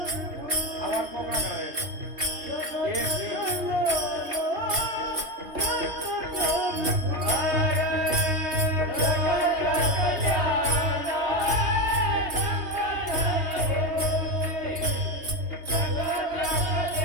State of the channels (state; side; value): late; left; 3.3 ms